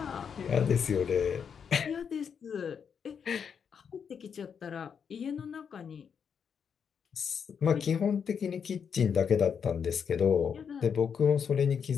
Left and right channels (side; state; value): right; quieter; 7.0 dB